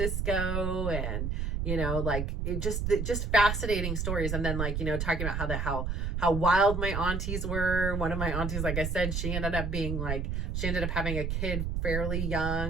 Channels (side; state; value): right; noise; rumble, 1 dB below the sound